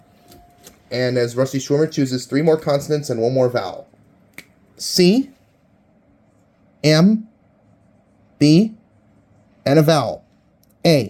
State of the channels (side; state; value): both; identical; correlation 1.00